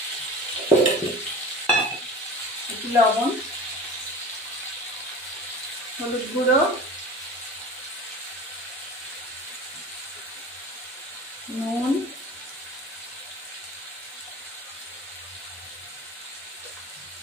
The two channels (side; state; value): both; normal; correlation 0.37